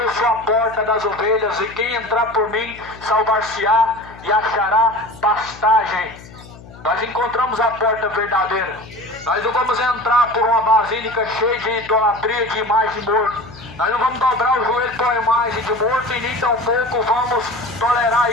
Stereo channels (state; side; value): noise; left; hum, 19 dB below the sound